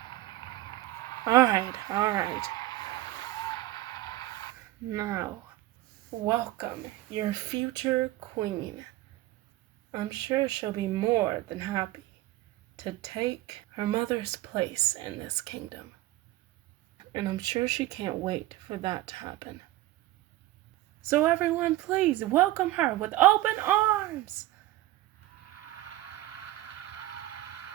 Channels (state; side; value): quieter; left; 16.4 dB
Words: Alright. Now, welcome your future queen. I'm sure she'll be more than happy to take her mother's place in this kingdom. And I'm sure she can't wait for that to happen. So everyone, please welcome her with open arms.